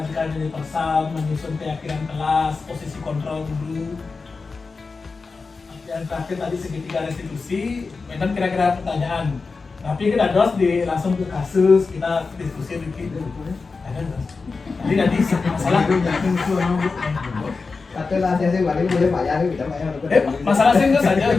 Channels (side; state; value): right; quieter; 4.3 dB